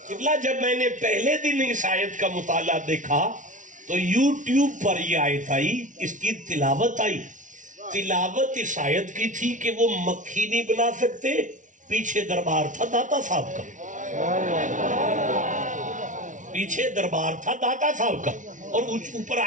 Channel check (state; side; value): late; left; 0.37 ms